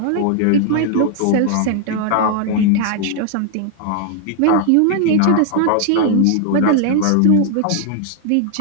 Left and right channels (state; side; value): different; both; correlation -0.01